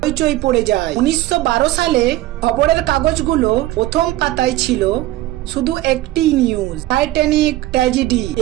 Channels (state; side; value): quieter; left; 16.5 dB